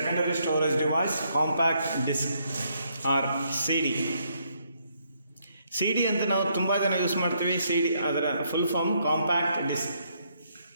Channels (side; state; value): both; inverted; correlation -0.73